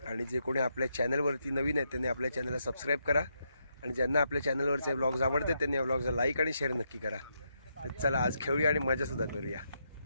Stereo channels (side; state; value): both; inverted; correlation -0.80